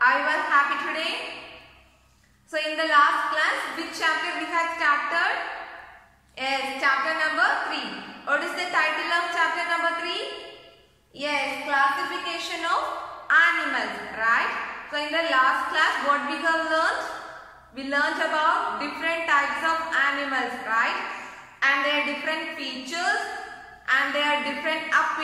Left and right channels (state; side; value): identical; both; correlation 1.00